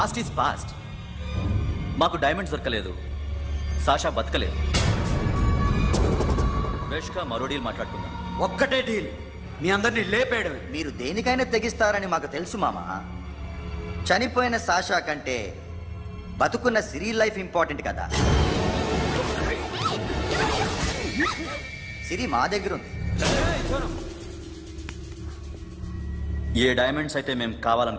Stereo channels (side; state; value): both; identical; correlation 1.00